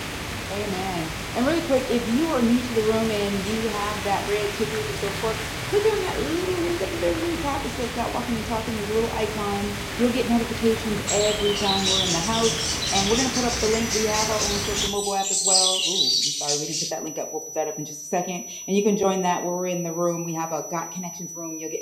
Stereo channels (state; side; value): identical; both; correlation 1.00